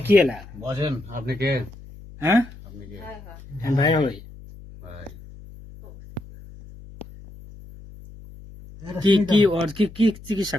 কি এলা বসেন। আপনি কে? হ্যাঁ আপনি কে? আমি ভাই হই ভাই কি কি ওর কি কি চিকিৎসা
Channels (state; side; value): noise; left; hum, 18 dB below the sound